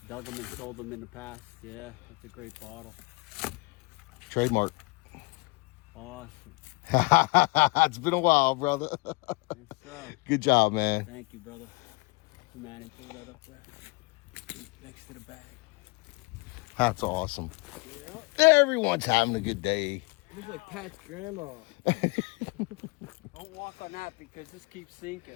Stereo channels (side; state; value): right; quieter; 26.8 dB